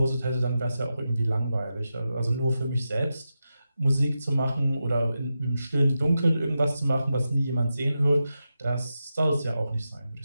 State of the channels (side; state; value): both; inverted; correlation -0.90